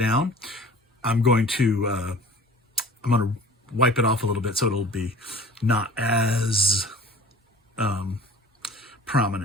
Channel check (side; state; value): both; normal; correlation 0.44